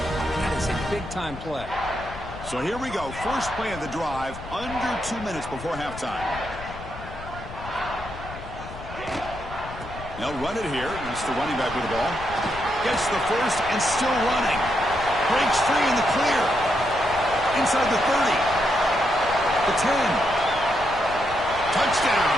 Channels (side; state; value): left; noise; rumble, 13 dB below the sound